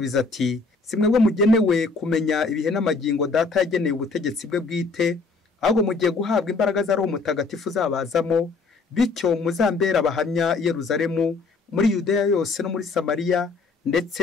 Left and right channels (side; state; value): right; quieter; 4.1 dB